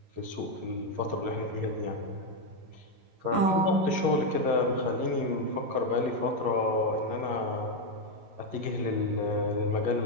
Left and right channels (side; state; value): left; late; 11 ms